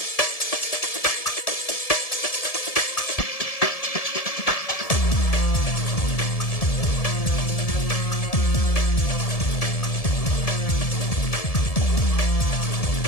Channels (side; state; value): right; late; 1.7 ms